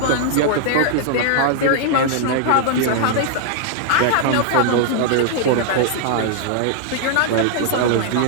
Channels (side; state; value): both; different; correlation -0.01